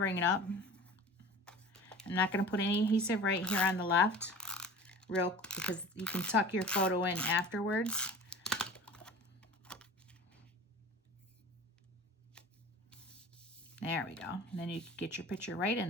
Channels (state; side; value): normal; both; correlation 0.40